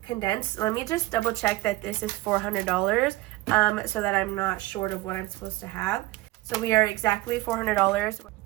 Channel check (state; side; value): quieter; left; 19.0 dB